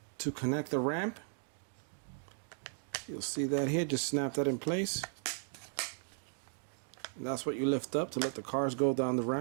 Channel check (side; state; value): left; silent; digital silence